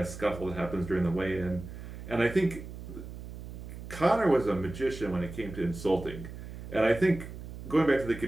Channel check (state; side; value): noise; right; hum, 11 dB below the sound